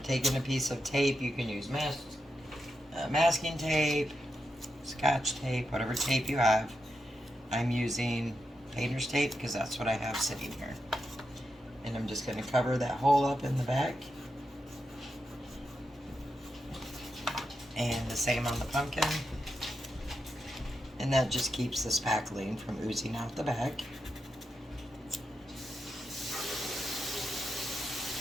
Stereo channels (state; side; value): normal; both; correlation 0.86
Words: taking a piece of tape. You can use masking tape, scotch tape, whatever tape you have. I'm using painter's tape because that's what I have sitting here. And I'm just going to cover that hole up in the back. And the same on the pumpkin. And that just keeps the spackling from oozing out the back.